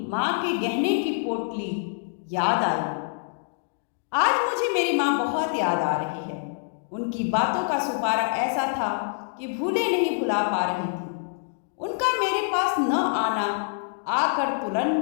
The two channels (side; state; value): right; silent; digital silence